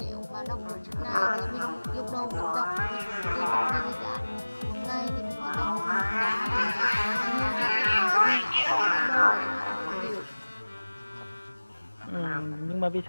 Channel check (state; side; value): inverted; both; correlation -1.00